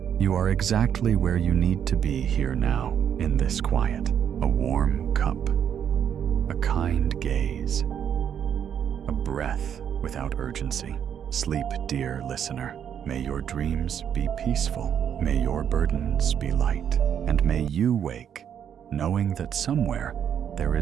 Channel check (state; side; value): quieter; left; 8.7 dB